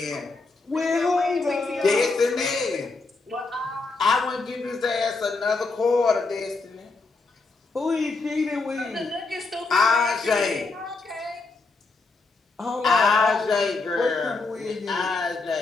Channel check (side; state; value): right; quieter; 3.7 dB